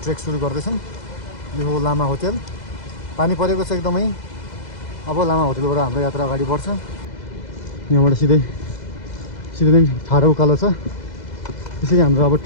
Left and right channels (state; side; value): late; right; 2.0 ms